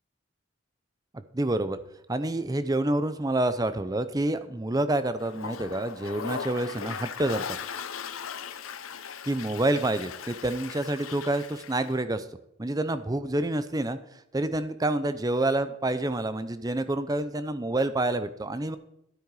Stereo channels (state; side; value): normal; both; correlation 0.64